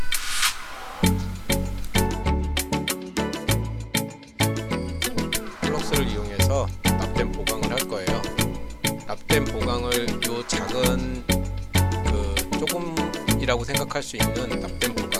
플럭스를 이용해서 납땜 보강을 할 거예요. 납땜 보강을 요 작은 조금이라고 생각할 수 있는 납땜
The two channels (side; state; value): both; identical; correlation 1.00